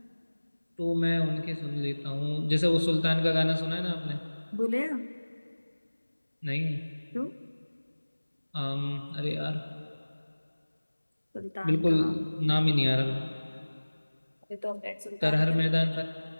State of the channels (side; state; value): both; inverted; correlation -1.00